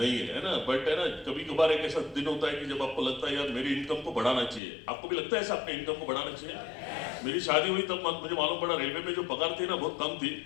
है ना, बट है ना कभी कभार एक ऐसा दिन होता है कि जब आपको लगता है यार मेरी इनकम को बढ़ाना चाहिए। आपको भी लगता है ऐसा, अपने इनकम को बढ़ाना चाहिए? मेरी शादी हुई तब मुझे मालूम पड़ा रेलवे में जो पगार थी ना बहुत कम थी,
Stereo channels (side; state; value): right; drops out; at 4.6 s